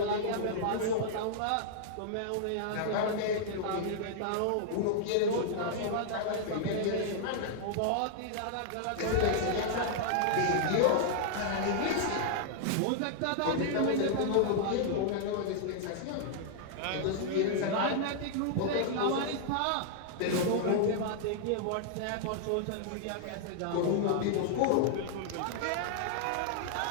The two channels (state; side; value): different; both; correlation -0.01